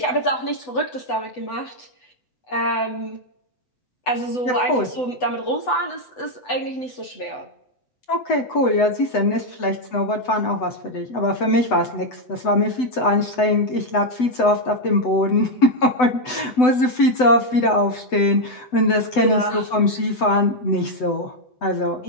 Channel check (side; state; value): right; late; 8.0 ms